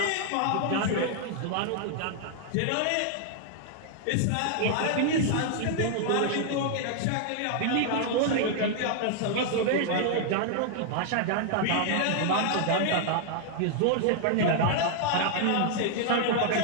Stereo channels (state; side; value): different; both; correlation 0.00